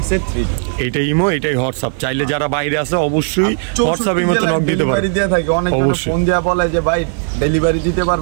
এটাই ইমো, এটাই হোয়াটসঅ্যাপ। চাইলে যারা বাইরে আছে অবশ্যই হোয়াটসঅ্যাপ ইমো তো নক দিতে পারবেন। দিয়ে থাকে অনেক ফোন দেয়া বলে যে ভাই ডেলিভারি দিতে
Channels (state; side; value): silent; left; 55 dB below the other